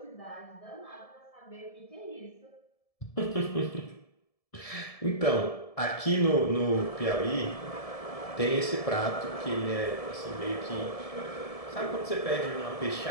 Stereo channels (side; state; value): right; late; 1.7 ms